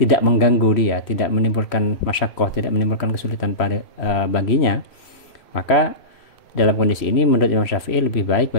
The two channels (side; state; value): right; late; 3.0 ms